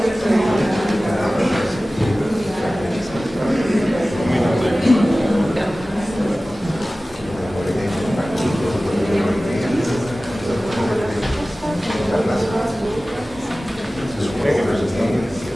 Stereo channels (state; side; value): normal; both; correlation 0.97